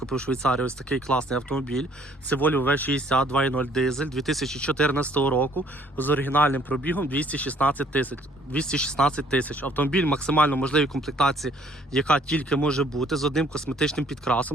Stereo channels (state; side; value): normal; both; correlation 0.61